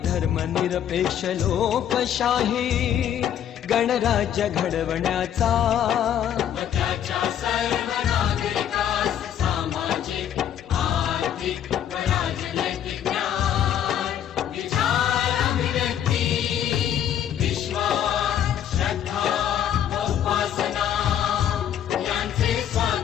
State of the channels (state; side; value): quieter; right; 10.0 dB